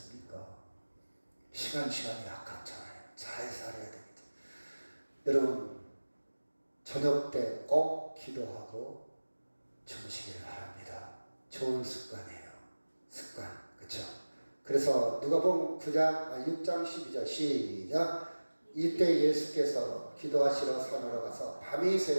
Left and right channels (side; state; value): both; inverted; correlation -1.00